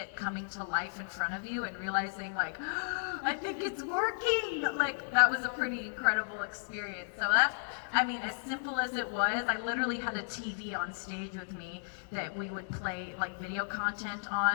coming to life in front of you and realizing I think it's working. That was a pretty incredible experience. So as simple as it was, I literally had a TV on stage with me that we would play video content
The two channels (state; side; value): silent; right; digital silence